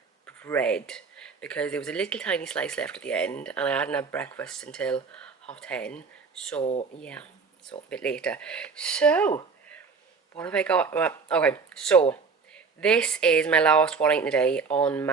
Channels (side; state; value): left; quieter; 5.0 dB